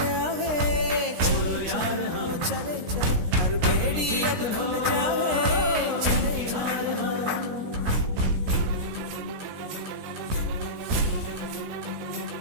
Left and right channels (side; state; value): left; late; 16 ms